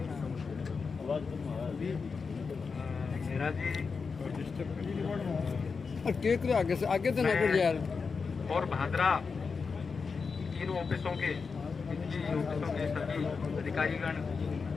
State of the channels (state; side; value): quieter; right; 5.1 dB